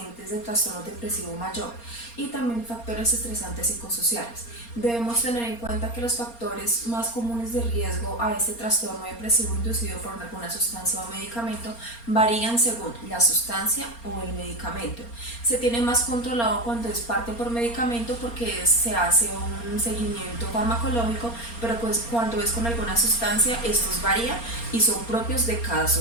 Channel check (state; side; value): late; right; 4.3 ms